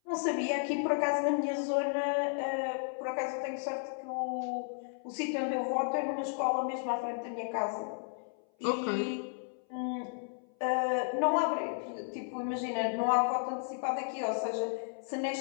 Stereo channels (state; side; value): silent; right; 55 dB below the other